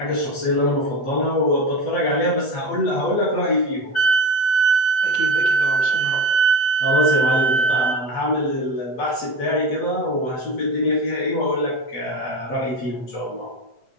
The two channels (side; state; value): right; late; 7.9 ms